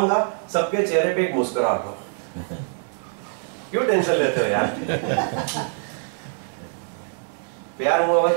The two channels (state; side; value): silent; left; 63 dB below the other